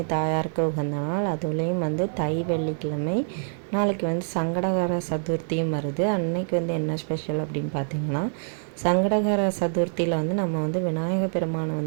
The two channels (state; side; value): silent; left; digital silence